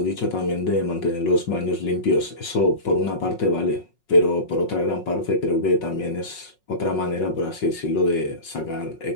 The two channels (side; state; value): right; late; 5.5 ms